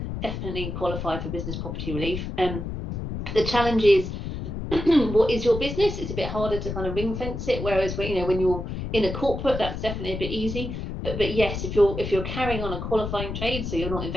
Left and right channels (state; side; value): noise; left; rumble, 5 dB below the sound